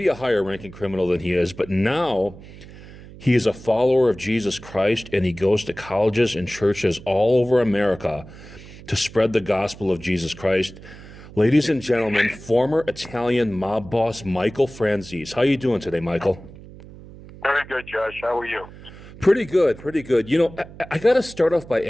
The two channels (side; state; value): right; noise; hum, 18 dB below the sound